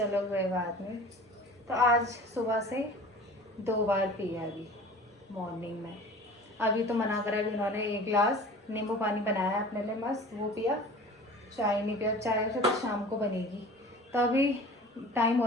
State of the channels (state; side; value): normal; both; correlation 0.42